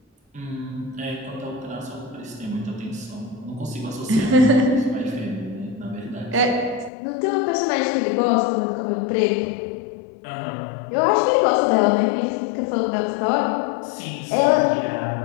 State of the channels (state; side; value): drops out; right; at 6.9 s